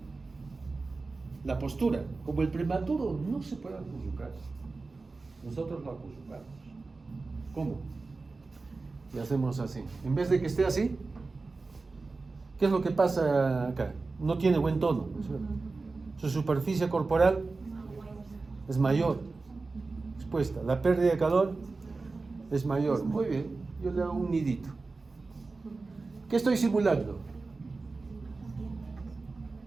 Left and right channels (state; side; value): quieter; left; 3.8 dB